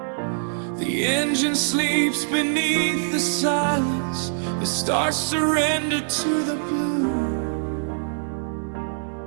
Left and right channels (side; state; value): left; silent; digital silence